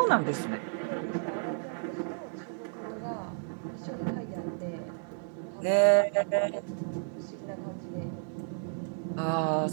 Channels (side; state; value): left; silent; digital silence